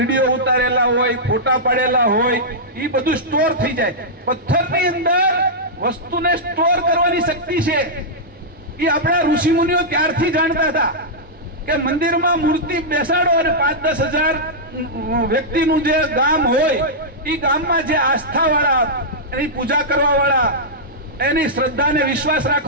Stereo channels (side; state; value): both; normal; correlation -0.10